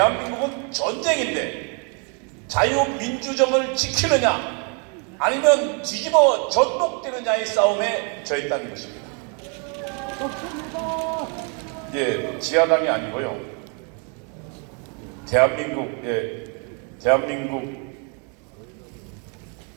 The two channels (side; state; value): left; quieter; 37.5 dB